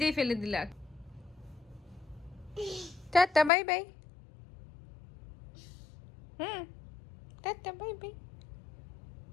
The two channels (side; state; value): right; drops out; at 3.5 s